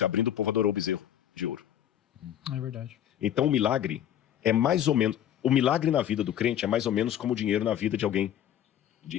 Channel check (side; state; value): right; quieter; 10.7 dB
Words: abrindo, o povo adorou o bezerro de ouro. É verdade. Então o milagre é mais ou menos... O milagre na vida do crente é mais ou menos como o dinheiro na vida de alguém